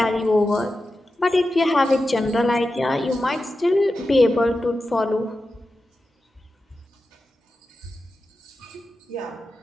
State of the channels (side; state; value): both; normal; correlation 0.92